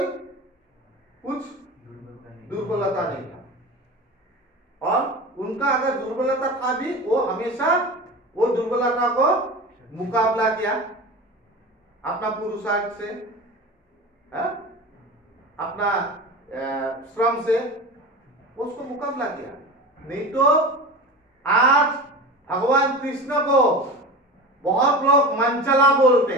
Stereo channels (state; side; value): normal; both; correlation 0.30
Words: कुछ दुर्बलता नहीं था, और उनका अगर दुर्बलता था भी वो हमेशा वो दुर्बलता को मुकाबला किया अपना पुरुषार्थ से, अपना श्रम से उसको मुकाबला किया। नहीं तो आज भगवान कृष्ण को बहुत लोग मंचला बोलते